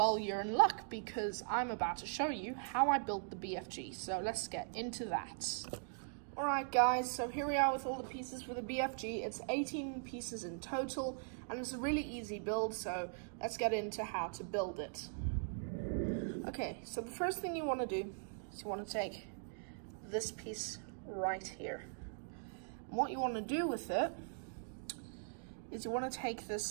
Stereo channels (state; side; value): silent; left; digital silence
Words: you're in luck, because I'm about to show you how I built the BFG. So let's get into that. Alright guys, so here we are with all the pieces for the BFG. It's 18 pieces in total, and it's a really easy build, so let's get into how to build it. Okay, so the first thing you want to do is you want to take this piece right here. And what you want to do with it is you want to take